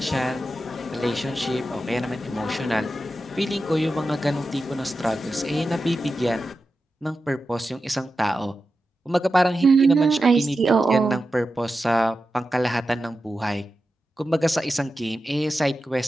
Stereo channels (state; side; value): normal; both; correlation 0.91